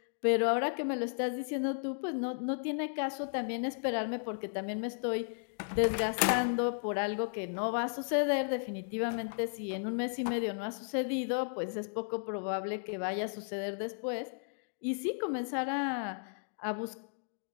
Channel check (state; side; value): silent; right; digital silence